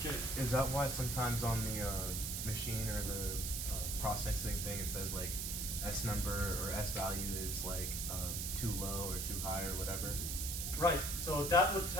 Jay. Is that why sometimes on the machine or the processing thing it says like S number or S value is like too low or too high or whatever? Right, so that would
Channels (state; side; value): noise; right; hiss, 2 dB below the sound